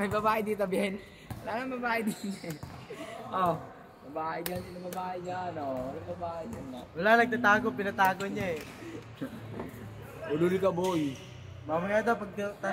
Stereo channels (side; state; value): both; identical; correlation 1.00